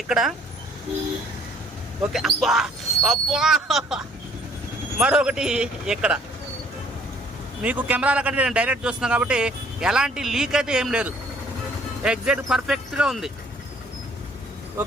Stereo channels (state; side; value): normal; both; correlation 0.59